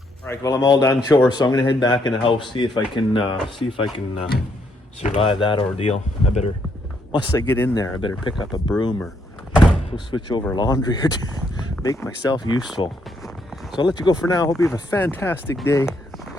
right, well, I'm all done chores, so I'm gonna head back in the house, see if I can survive that ordeal. I better, once I get in there, I better pick up a broom or go switch over laundry or make myself useful. So I'll let you go for now. Hope you have a fantastic day.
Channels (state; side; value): normal; both; correlation 0.74